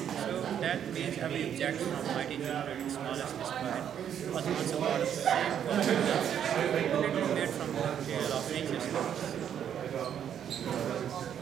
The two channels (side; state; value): left; quieter; 9.2 dB